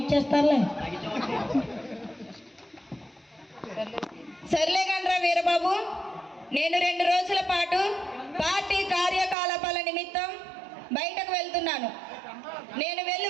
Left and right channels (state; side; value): drops out; left; at 9.3 s